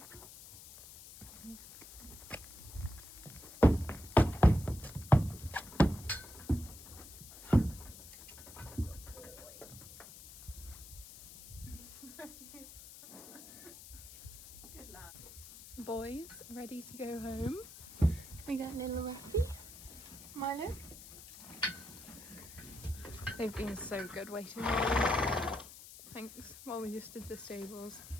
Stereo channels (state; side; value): noise; left; hiss, 15 dB below the sound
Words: Good lad. boys ready to go home. We got little Rocky, Milo. They've been so good waiting while we, thanks, while we just did the stables.